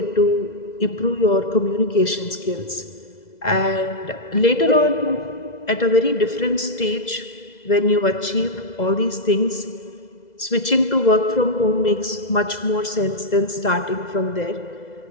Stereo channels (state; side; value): late; right; 2.0 ms